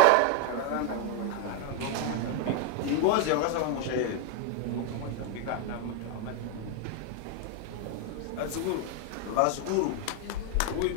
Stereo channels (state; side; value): different; both; correlation 0.01